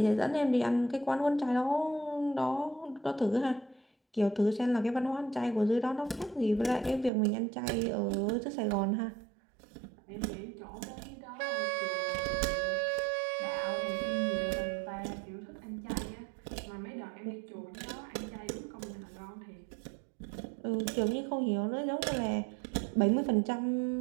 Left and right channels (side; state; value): left; drops out; at 7.1 s